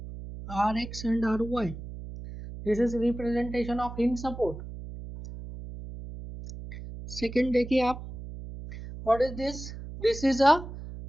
Rx and Ry. This is representation of hinge support. Second देखिए आप, what is this? This is a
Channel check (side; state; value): right; noise; hum, 11 dB below the sound